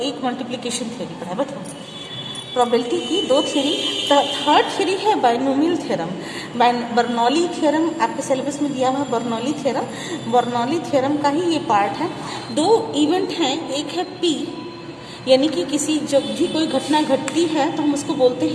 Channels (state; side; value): identical; both; correlation 1.00